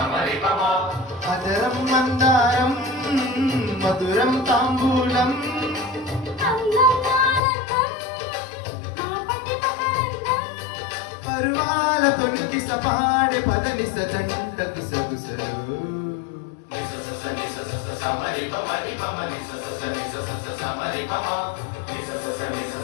అదరం మందారం మధురం తాంబూలం పరువాల తొలికి సపాడే పదని సజంటకు సగుసరు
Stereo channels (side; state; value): right; drops out; at 7.4 s